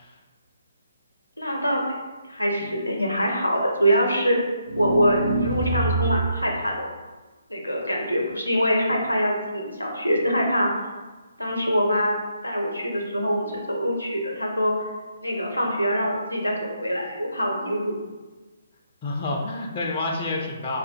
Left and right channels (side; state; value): both; inverted; correlation -0.77